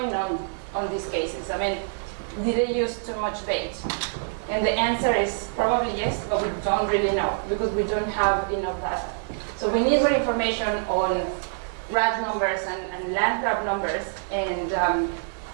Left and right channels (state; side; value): silent; left; digital silence